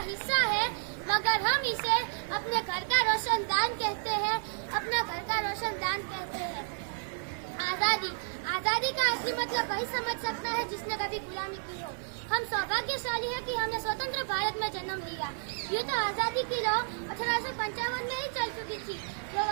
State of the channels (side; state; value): left; silent; 57 dB below the other